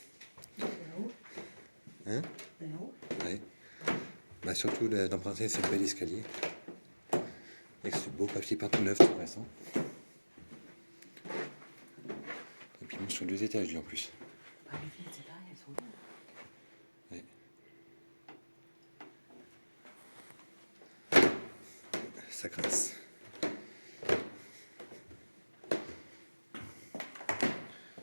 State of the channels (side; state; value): both; inverted; correlation -1.00